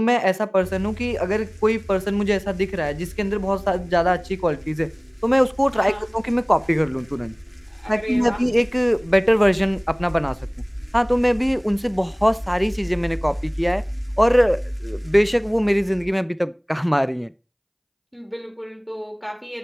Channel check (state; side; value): identical; both; correlation 1.00